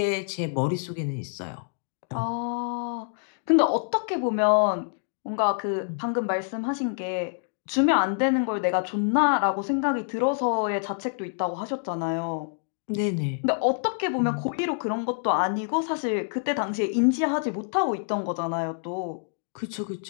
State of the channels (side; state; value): right; silent; digital silence